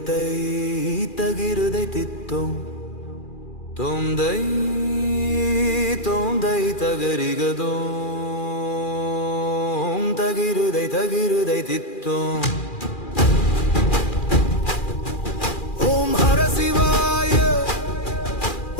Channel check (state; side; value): late; right; 2.4 ms